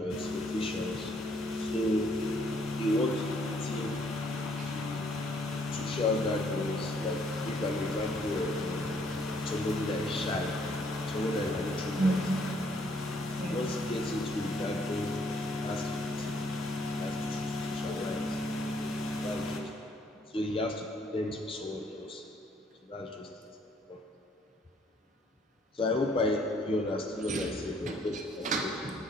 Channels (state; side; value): normal; both; correlation 0.66